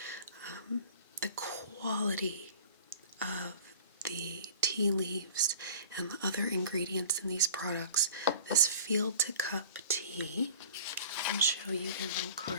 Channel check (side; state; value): both; inverted; correlation -0.43